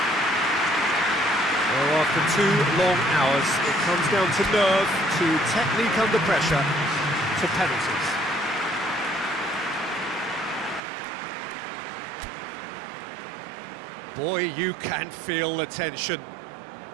Well, after 2 long hours, it comes down to nerve, to technique under pressure, to penalties. Boy, you can feel the tension.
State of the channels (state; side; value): drops out; left; at 10.8 s